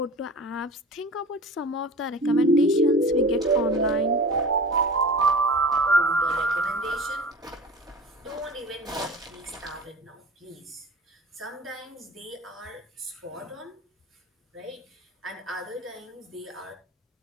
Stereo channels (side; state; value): both; normal; correlation 0.37